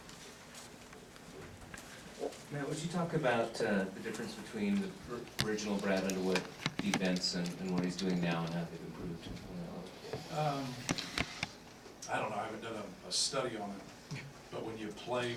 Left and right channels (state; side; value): identical; both; correlation 1.00